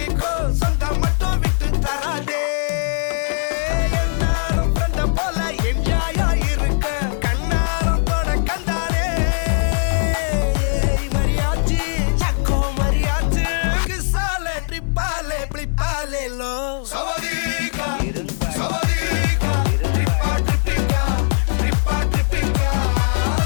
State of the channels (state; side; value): silent; right; 66 dB below the other